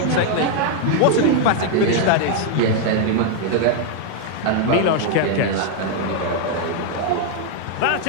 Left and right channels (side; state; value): both; different; correlation 0.00